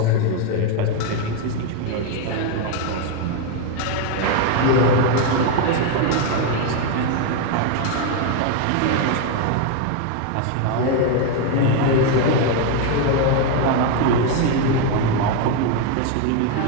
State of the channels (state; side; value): different; both; correlation 0.01